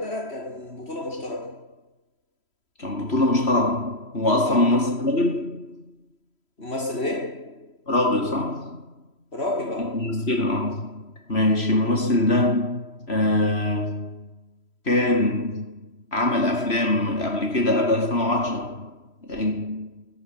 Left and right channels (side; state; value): right; late; 3.1 ms